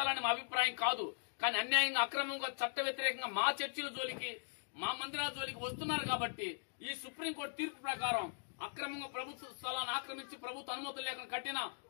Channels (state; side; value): silent; right; digital silence